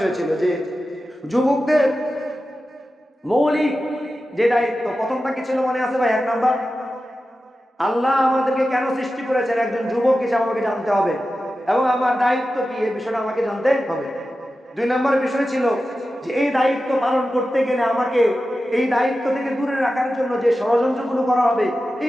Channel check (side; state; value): both; normal; correlation 0.93